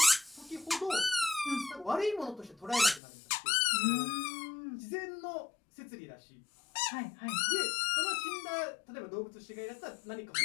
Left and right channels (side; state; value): right; drops out; at 3.0 s